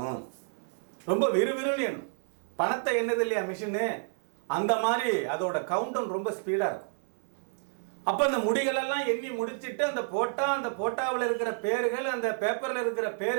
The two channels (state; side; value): silent; left; 56 dB below the other